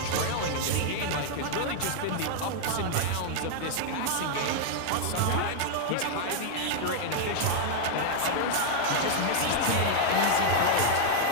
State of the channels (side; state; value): both; different; correlation 0.00